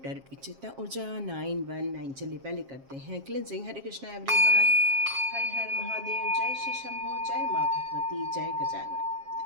की चेतना ऊर्जा 919। चलिए पहले करते हैं क्लिनजिंग। हरे कृष्णा एवरीवन, हर हर महादेव, जय श्री शंभू, जय माँ भगवती, जय Gajanan.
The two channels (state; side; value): late; left; 7.4 ms